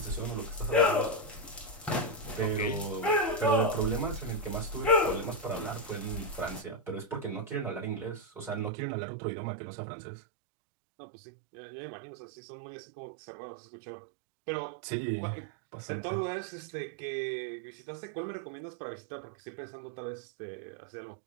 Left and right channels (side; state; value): left; drops out; at 8.7 s